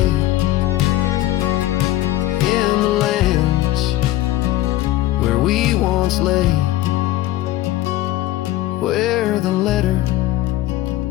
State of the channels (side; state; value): right; quieter; 15.1 dB